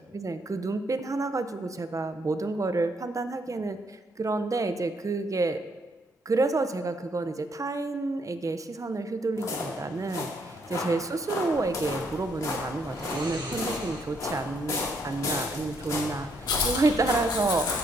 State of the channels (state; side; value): normal; both; correlation 0.72